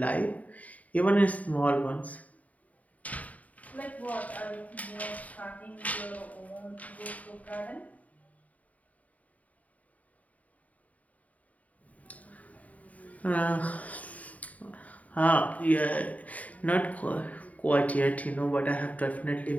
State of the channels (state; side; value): late; right; 0.071 ms